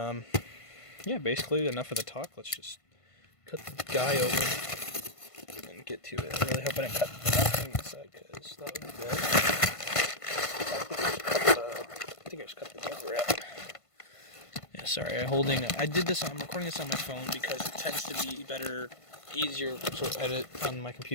yeah, basically enough of the talk. Let's just cut the guy open and get to it. I really hope I didn't cut nothing inside, because that would be bad. I think I just cut the cover out. Yeah, sorry. I'm recording this on my phone because it tends to be easier to edit on my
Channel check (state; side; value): late; right; 1.5 ms